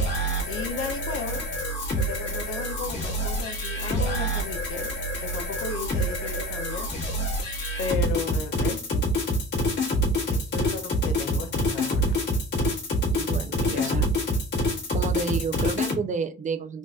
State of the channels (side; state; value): both; normal; correlation 0.36